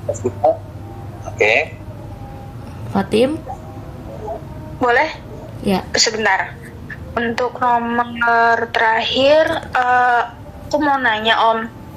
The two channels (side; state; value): both; identical; correlation 1.00